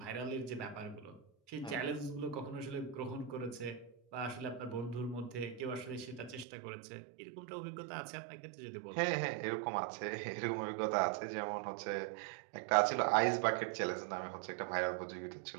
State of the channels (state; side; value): drops out; left; at 6.5 s